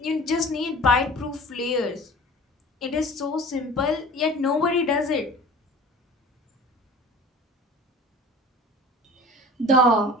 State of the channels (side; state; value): both; normal; correlation 0.42